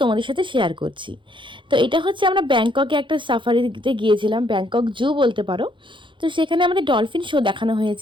তোমাদের সাথে শেয়ার করছি। তো এটা হচ্ছে, আমরা ব্যাংককে একটা সাফারিতে গিয়েছিলাম, ব্যাংকক জু বলতে পারো। তো সেখানে আমাদের ডলফিন শো দেখানো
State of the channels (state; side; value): late; left; 0.24 ms